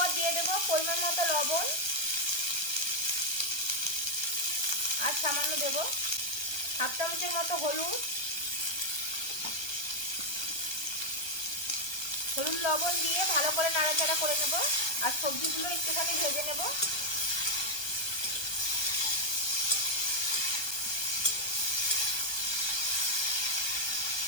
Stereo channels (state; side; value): late; right; 1.2 ms